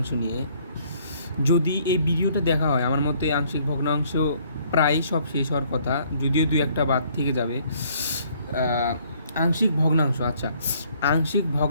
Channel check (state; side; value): inverted; both; correlation -0.63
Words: নিয়ে। যদি এই ভিডিওটা দেখা হয়, আমার মতে আংশিক ভগ্নাংশ প্রায় সব শেষ হওয়ার কথা, যদিও দুই একটা বাদ থেকে যাবে। আংশিক ভগ্নাংশ, আচ্ছা, আংশিক